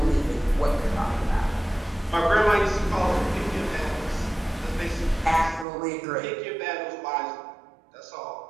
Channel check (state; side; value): drops out; left; at 5.7 s